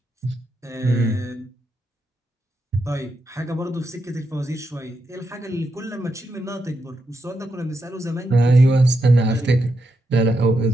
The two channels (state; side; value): normal; both; correlation 0.83